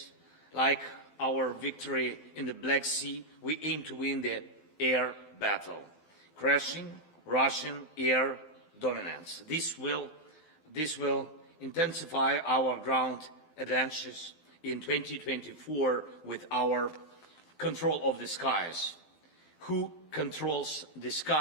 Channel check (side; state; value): right; late; 12 ms